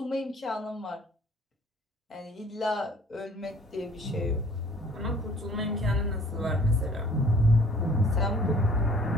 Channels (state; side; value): normal; both; correlation 0.54